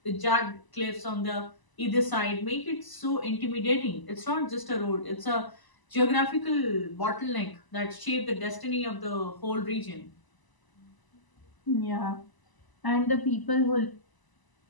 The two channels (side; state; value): right; late; 1.0 ms